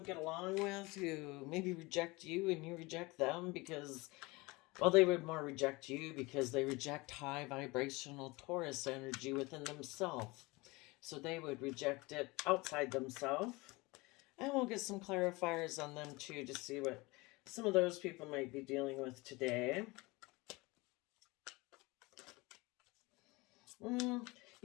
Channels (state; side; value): quieter; right; 23.7 dB